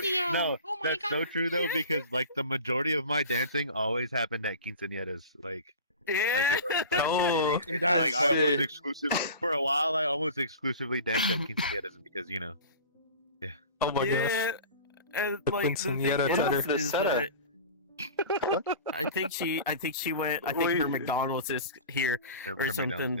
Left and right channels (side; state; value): both; inverted; correlation -0.37